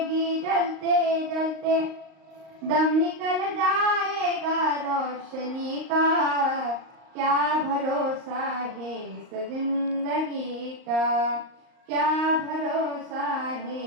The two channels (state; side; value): late; left; 38 ms